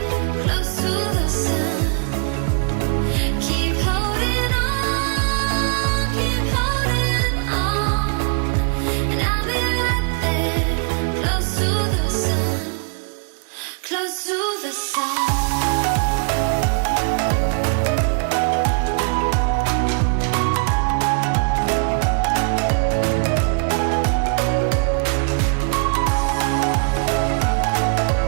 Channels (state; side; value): quieter; left; 39.2 dB